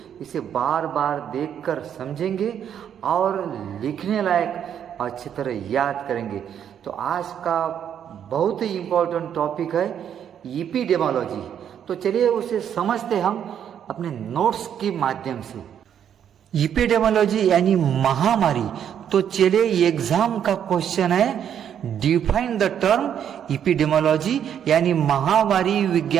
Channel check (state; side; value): quieter; left; 9.1 dB